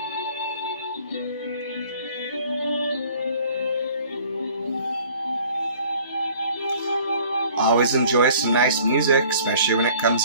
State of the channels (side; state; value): both; inverted; correlation -0.52